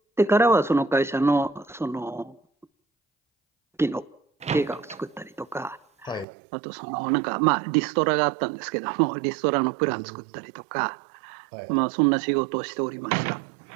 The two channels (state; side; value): drops out; left; at 6.2 s